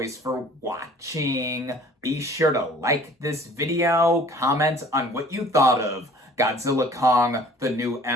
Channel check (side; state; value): both; normal; correlation 0.51